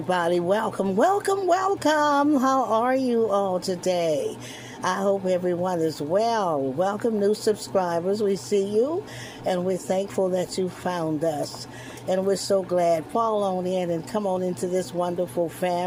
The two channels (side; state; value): both; identical; correlation 1.00